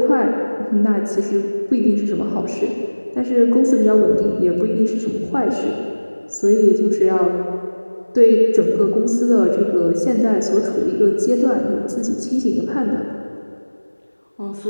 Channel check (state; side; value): inverted; both; correlation -1.00